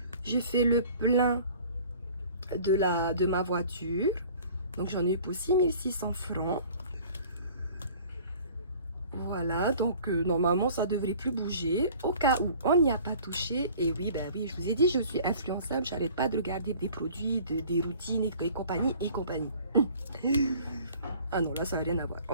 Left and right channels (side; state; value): both; inverted; correlation -0.48